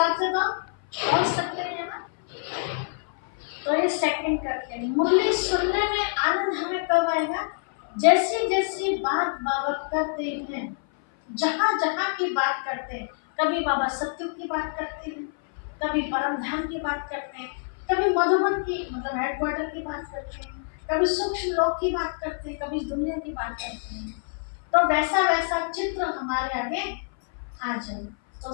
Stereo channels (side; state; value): right; silent; 57 dB below the other